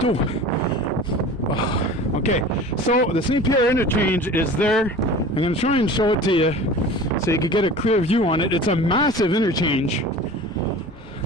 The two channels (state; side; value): normal; both; correlation 0.39